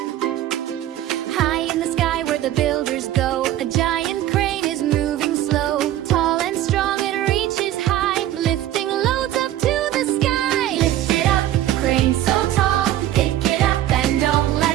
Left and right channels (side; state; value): left; quieter; 13.1 dB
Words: High in the sky where the builders go, a giant crane is moving slow. Tall and strong, it reaches high, lifting loads up to the sky. Lift it up, crane so tall, pick it up and don't